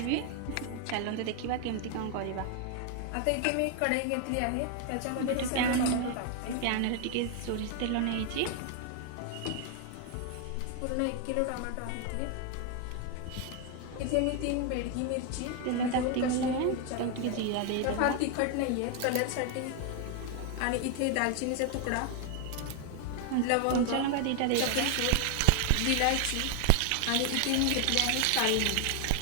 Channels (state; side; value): different; both; correlation 0.00